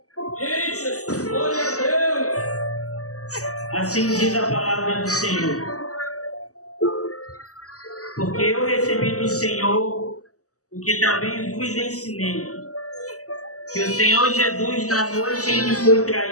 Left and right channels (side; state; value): right; late; 0.66 ms